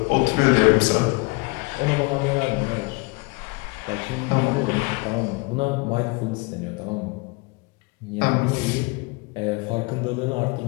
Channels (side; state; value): right; quieter; 27.2 dB